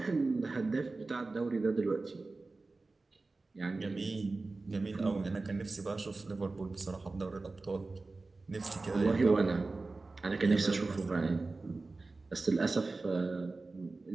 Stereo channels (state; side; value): quieter; left; 3.5 dB